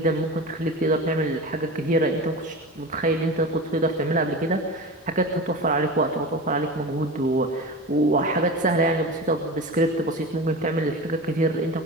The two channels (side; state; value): both; normal; correlation 0.29